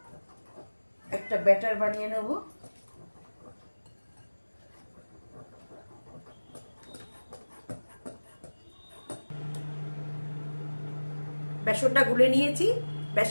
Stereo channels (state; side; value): inverted; both; correlation -1.00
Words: একটা ব্যাটার বানিয়ে নেব। বেসনটা গুলে নিয়েছি।